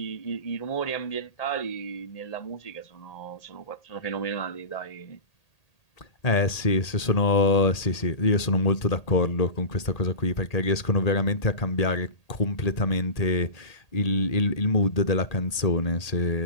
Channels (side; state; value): right; late; 1.8 ms